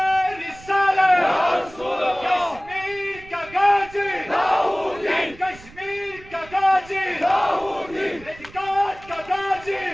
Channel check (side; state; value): right; noise; rumble, 20 dB below the sound